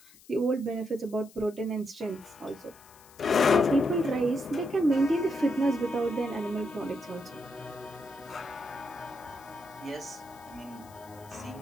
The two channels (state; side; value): noise; left; hiss, 24 dB below the sound